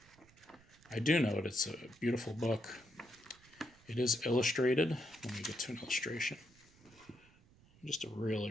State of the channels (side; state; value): right; noise; rumble, 27 dB below the sound